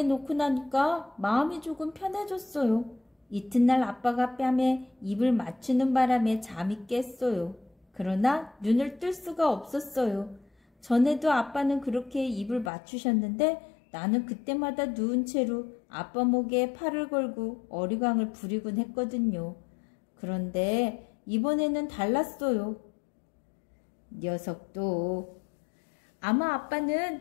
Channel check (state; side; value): drops out; right; at 12.7 s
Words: 놓고 나니까 마음이 조금 편해졌어요. 이튿날 아빠가 뺨에 입을 맞추는 바람에 잠이 깼어요. 그러나 눈을 뜰 수가 없었어요. 전에도 아빠는 그렇게 입을 맞추셨는데 나는 그때마다 누운 채로 아빠 목에 팔을 걸고 어리광을 부리곤 했거든요. 그런데 이번에는 달랐어요. 녀석도. 아마